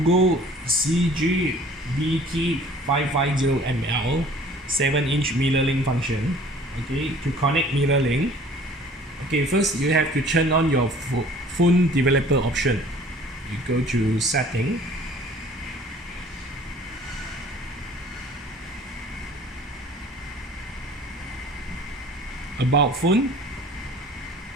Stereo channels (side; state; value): both; normal; correlation 0.50